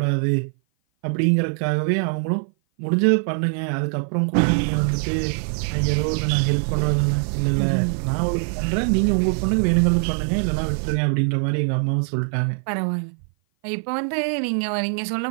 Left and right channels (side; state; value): left; silent; 56 dB below the other